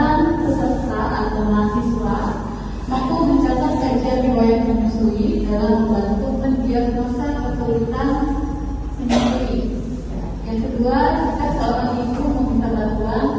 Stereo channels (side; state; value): both; identical; correlation 1.00